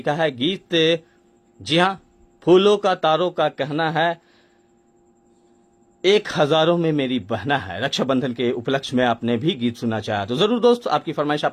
है गीत, जी हाँ, फूलों का तारों का कहना है, एक हजारों में मेरी बहना है। रक्षाबंधन के उपलक्ष्य में आपने भी गीत सुनना चाहा तो जरूर दोस्त आपकी फरमाइश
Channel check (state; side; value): identical; both; correlation 1.00